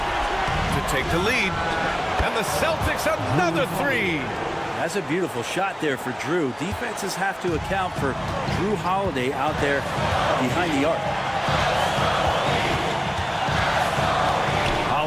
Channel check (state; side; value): identical; both; correlation 1.00